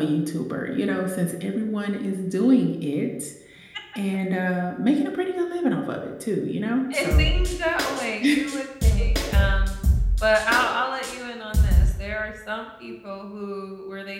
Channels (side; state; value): both; identical; correlation 1.00